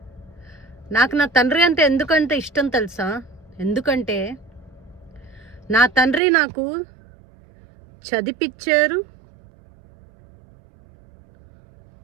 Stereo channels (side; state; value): left; drops out; at 6.2 s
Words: నాకు నా తండ్రి అంటే ఎందుకంటే ఇష్టం తెలుసా? ఎందుకంటే నా తండ్రి నాకు చదివిపించారు,